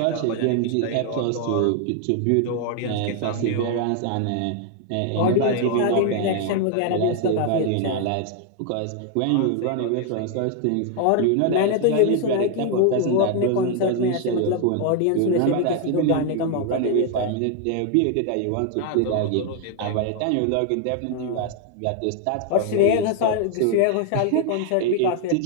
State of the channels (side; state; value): both; different; correlation 0.00